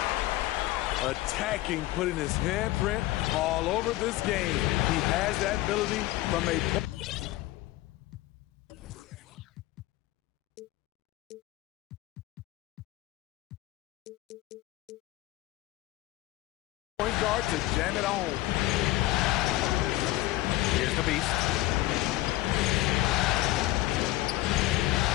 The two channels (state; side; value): quieter; right; 17.1 dB